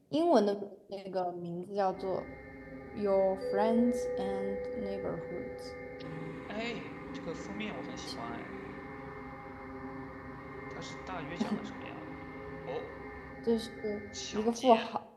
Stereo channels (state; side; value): identical; both; correlation 1.00